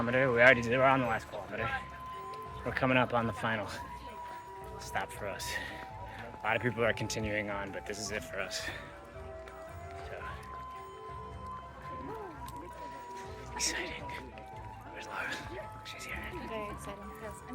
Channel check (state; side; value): identical; both; correlation 1.00